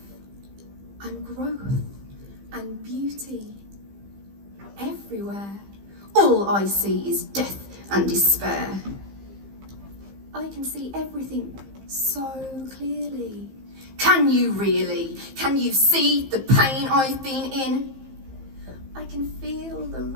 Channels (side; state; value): left; late; 15 ms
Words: and growth and beauty everywhere. All I see is death and despair. I can see everything so clearly. Can you really? Can you see the pain I've been in? I can feel the